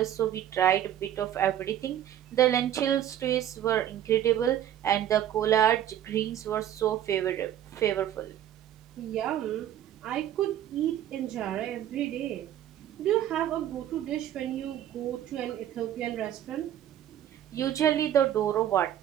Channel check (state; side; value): quieter; left; 11.2 dB